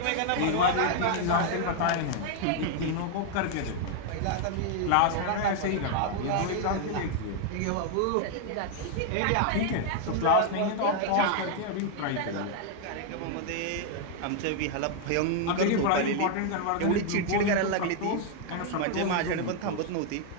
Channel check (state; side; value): different; both; correlation 0.00